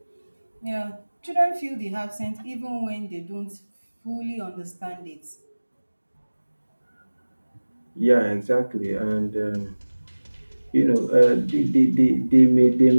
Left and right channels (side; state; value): both; inverted; correlation -1.00